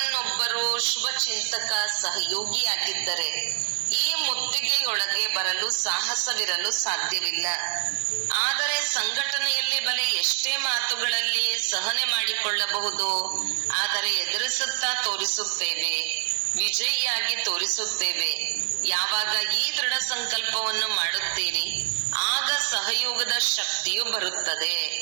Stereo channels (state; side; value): silent; left; 59 dB below the other